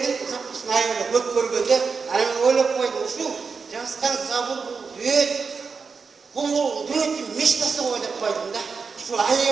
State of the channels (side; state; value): left; quieter; 5.2 dB